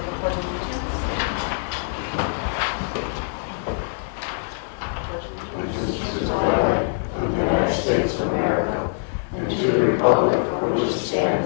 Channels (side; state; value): right; silent; digital silence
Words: the Pledge of Allegiance. Allegiance to the flag of the United States of America and to the republic for which it